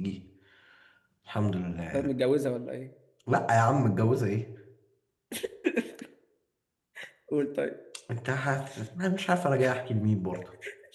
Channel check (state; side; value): identical; both; correlation 1.00